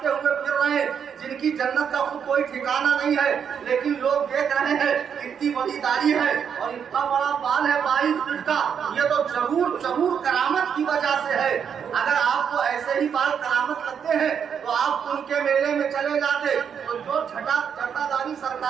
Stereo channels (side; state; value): left; quieter; 7.5 dB